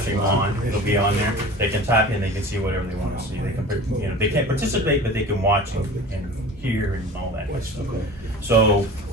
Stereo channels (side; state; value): both; normal; correlation 0.39